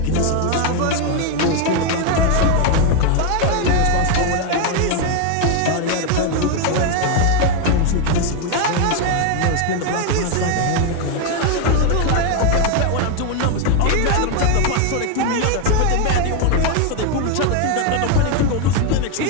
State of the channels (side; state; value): both; different; correlation 0.01